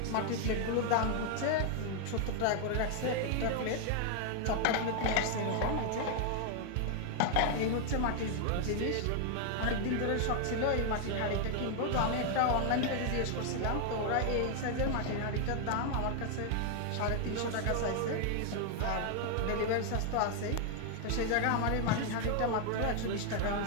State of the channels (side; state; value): both; different; correlation 0.00